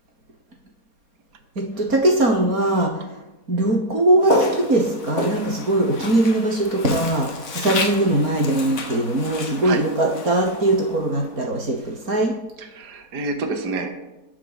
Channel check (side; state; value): left; late; 4.2 ms